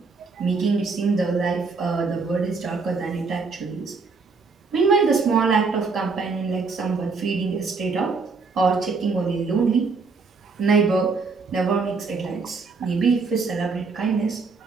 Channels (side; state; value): left; quieter; 4.4 dB